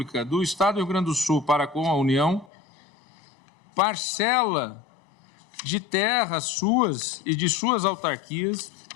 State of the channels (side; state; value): right; drops out; at 2.5 s